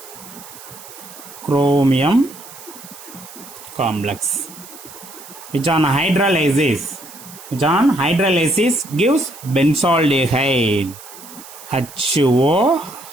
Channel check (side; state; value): right; noise; hiss, 17 dB below the sound